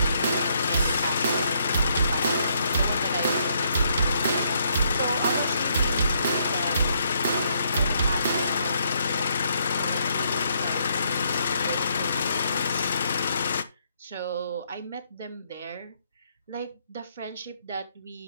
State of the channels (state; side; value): inverted; both; correlation -0.72